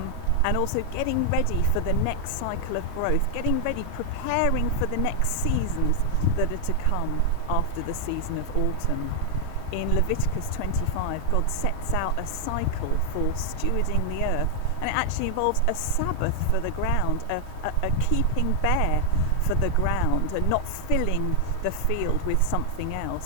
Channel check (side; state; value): both; different; correlation 0.00